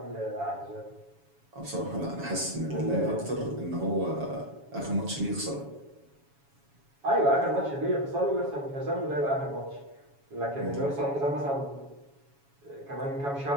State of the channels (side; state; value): left; late; 7.2 ms